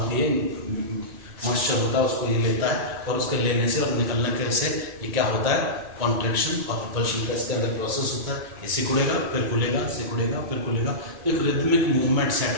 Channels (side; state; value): left; late; 2.4 ms